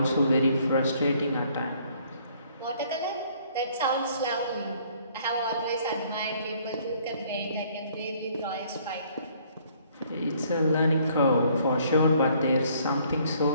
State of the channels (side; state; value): both; inverted; correlation -0.62